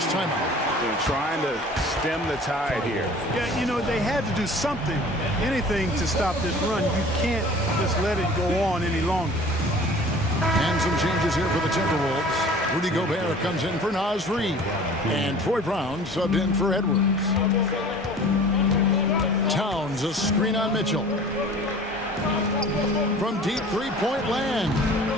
timeout. They're trying to stem the tide here. Yeah, you know, they had to do something, anything to stop this run. You can't just let it go on any longer. And some changes here for the Timberwolves. Rudy Gobert comes in for Naz Reid. And Troy Brown subbed in for Edwards. Towns, a screen on Mitchell. From deep three-point land.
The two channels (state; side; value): normal; both; correlation 0.45